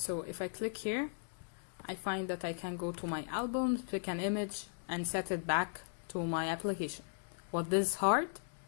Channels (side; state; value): right; silent; digital silence